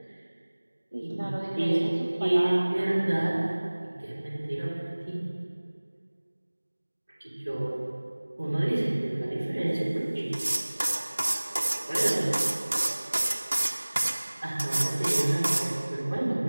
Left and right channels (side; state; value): both; inverted; correlation -1.00